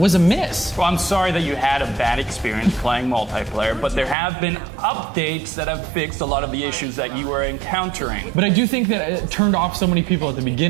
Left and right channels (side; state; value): left; drops out; at 4.2 s